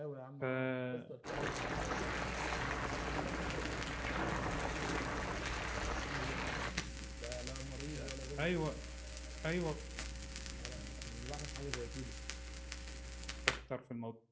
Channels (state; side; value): identical; both; correlation 1.00